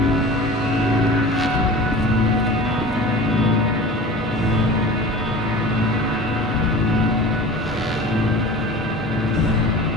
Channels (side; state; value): both; normal; correlation 0.37